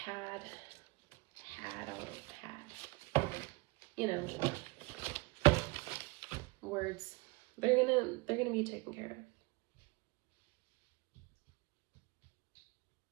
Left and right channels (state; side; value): quieter; left; 26.6 dB